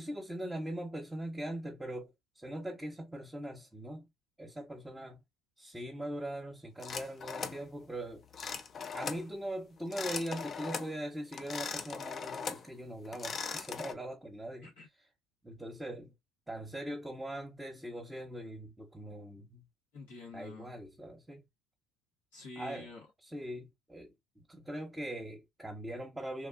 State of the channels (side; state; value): both; normal; correlation 0.85